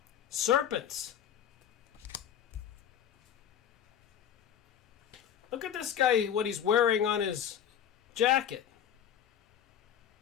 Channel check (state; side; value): quieter; right; 9.4 dB